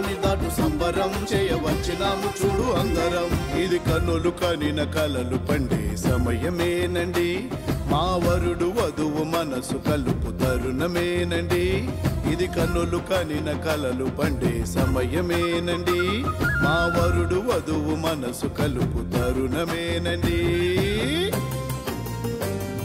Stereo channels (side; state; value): both; identical; correlation 1.00